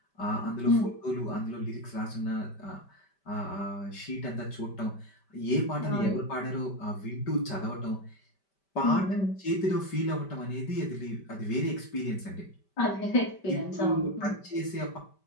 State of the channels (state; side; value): late; right; 5.1 ms